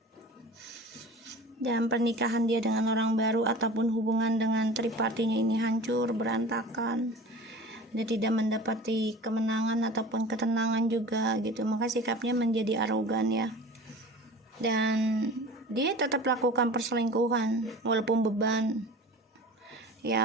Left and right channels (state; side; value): normal; both; correlation 0.39